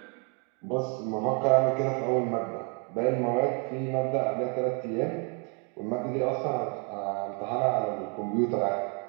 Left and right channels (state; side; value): quieter; left; 37.2 dB